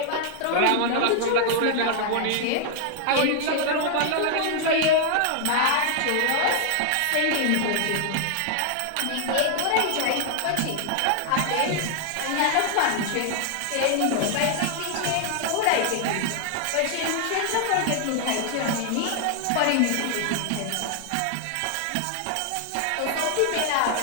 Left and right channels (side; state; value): both; different; correlation 0.00